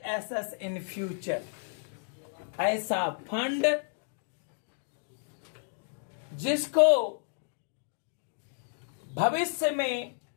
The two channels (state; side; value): silent; right; digital silence